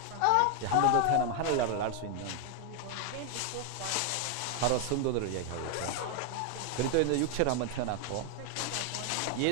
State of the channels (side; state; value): both; different; correlation 0.00